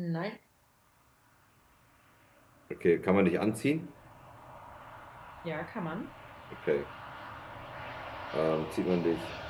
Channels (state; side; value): identical; both; correlation 1.00